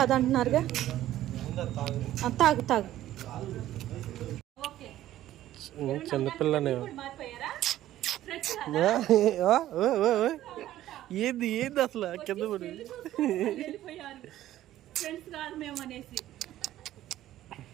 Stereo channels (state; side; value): quieter; left; 13.6 dB